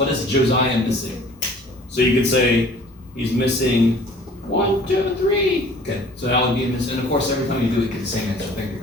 is Josiah missing? So you could say he's missing 1, 2, 3. Okay, so that would be missing. And of course, every time you do it, you get the same answer. Think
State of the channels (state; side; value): normal; both; correlation 0.49